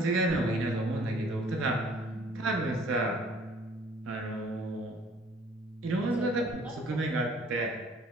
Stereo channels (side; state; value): both; normal; correlation 0.56